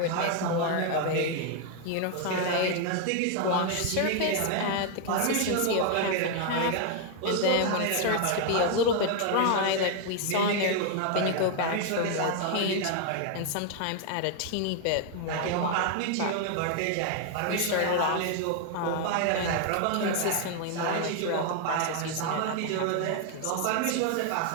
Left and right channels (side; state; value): both; different; correlation 0.00